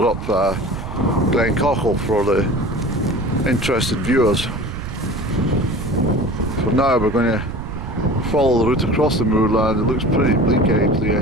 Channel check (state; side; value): noise; right; rumble, 8 dB below the sound